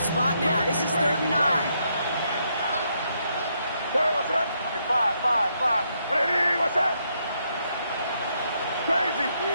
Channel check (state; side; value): inverted; both; correlation -0.76